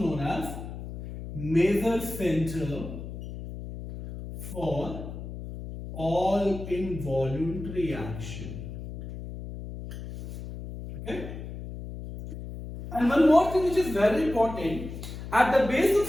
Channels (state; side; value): noise; left; hum, 10 dB below the sound